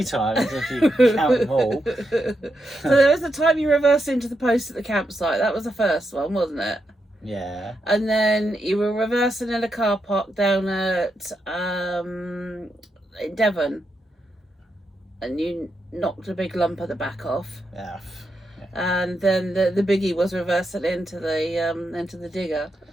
times if you count them all. So there was the time you reversed into the post at the campsite. That was the first one, wasn't it? Yeah. And then you were reversing in a car park down at in Devon, and you knocked a big lump at the back off. Yeah. And then the biggie was reversing into the digger.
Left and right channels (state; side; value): normal; both; correlation 0.84